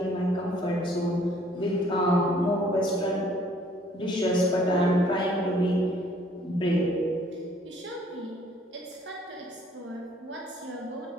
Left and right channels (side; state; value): both; normal; correlation 0.60